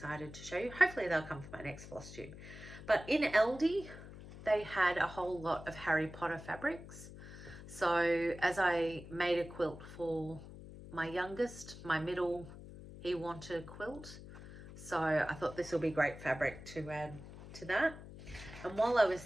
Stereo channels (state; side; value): noise; left; hum, 14 dB below the sound